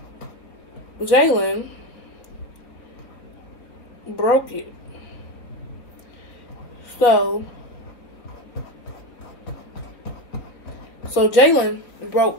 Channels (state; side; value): late; right; 3.8 ms